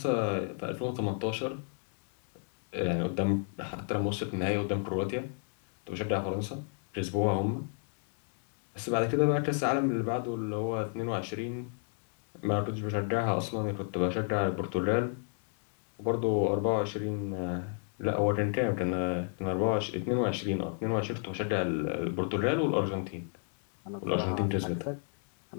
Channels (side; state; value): right; silent; 56 dB below the other